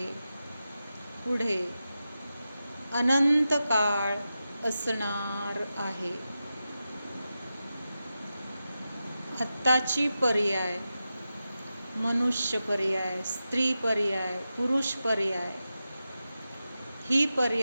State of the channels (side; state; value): both; inverted; correlation -0.91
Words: पुढे अनंत काळ असणार आहे. आत्ताची पर्याय, मनुष्य पर्याय, स्त्री पर्याय, पुरुष पर्याय, ही